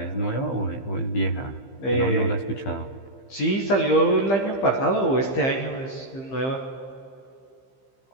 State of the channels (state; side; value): late; right; 15 ms